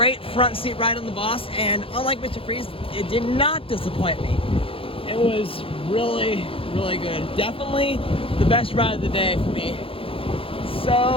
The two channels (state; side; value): late; right; 0.27 ms